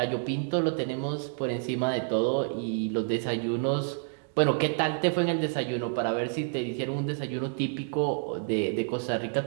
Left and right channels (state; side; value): silent; left; digital silence